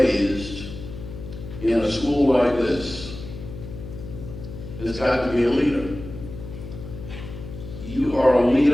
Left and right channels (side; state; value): left; noise; hum, 11 dB below the sound